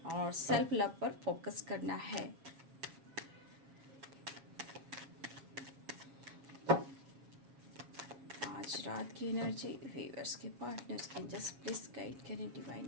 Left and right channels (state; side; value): late; left; 7.3 ms